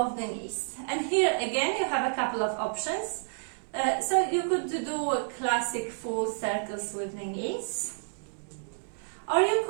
the knees. And here again you have a couple of options. So you could do classic full circles with the knees, or you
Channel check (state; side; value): silent; left; digital silence